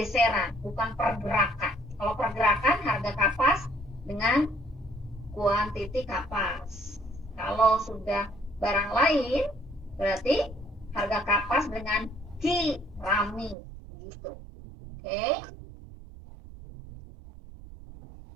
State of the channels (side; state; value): left; drops out; at 13.6 s